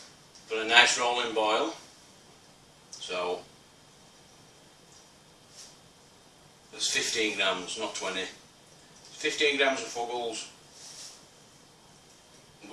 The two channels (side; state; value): both; identical; correlation 1.00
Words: got a nice rolling boil. So, there's 15 grams, not 20. 15 grams of fuggles